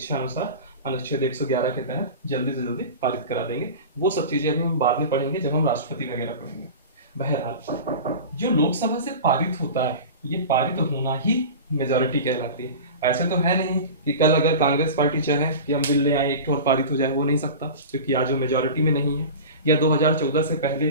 अनुसार अनुच्छेद 111 के तहत जल्दी से जल्दी पारित करा देंगे। वो सब चीजें अभी हम बाद में पढ़ेंगे जब हम राष्ट्रपति वगैरह पढ़ेंगे। बहरहाल जो लोकसभा से पारित होता है, ये पारित होना ही मेजॉरिटी कहलाती है। ऐसे तो है नहीं कि कल अगर कांग्रेस पार्टी चाहे कि हम बिल ले आए एक और पारित हो जाए, वो नहीं सकता क्योंकि आज वो मेजॉरिटी में नहीं है। या 2014 से पहले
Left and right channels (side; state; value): both; inverted; correlation -0.32